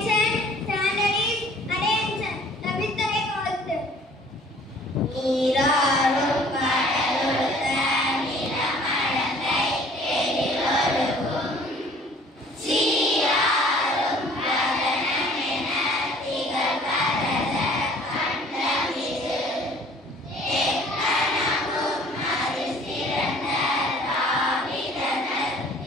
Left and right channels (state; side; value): normal; both; correlation 0.53